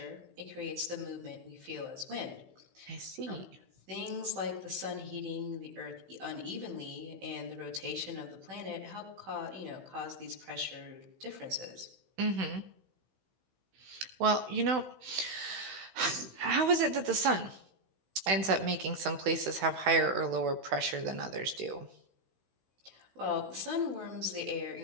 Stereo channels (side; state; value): left; late; 16 ms